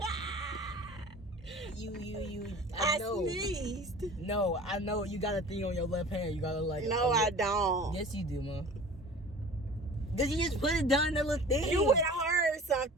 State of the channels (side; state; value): both; normal; correlation 0.42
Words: I know. Sneezed. No, I know. You got a thing on your left hand. You gotta like. No, I don't. Yes, you do, Mom. Did you just put it down that little thing? You would have heard